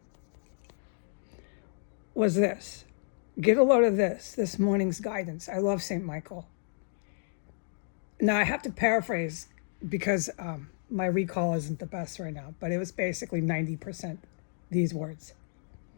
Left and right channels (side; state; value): right; silent; digital silence